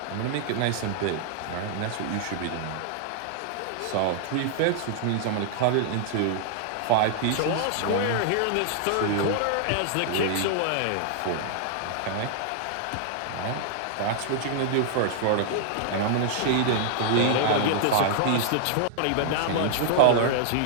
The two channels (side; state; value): both; different; correlation -0.01